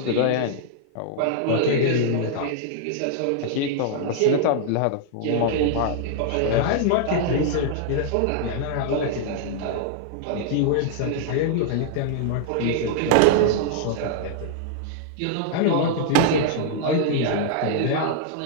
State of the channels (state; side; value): different; both; correlation -0.01